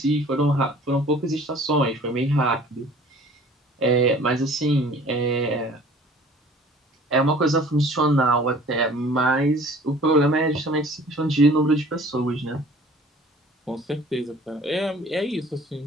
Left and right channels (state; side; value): normal; both; correlation 0.49